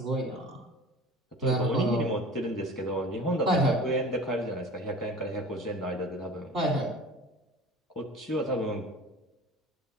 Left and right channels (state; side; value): normal; both; correlation 0.40